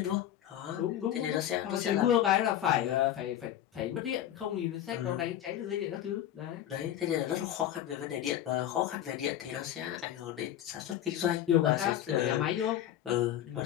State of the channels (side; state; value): right; quieter; 11.4 dB